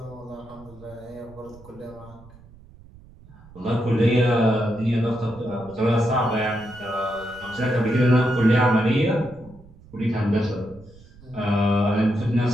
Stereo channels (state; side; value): noise; right; rumble, 22 dB below the sound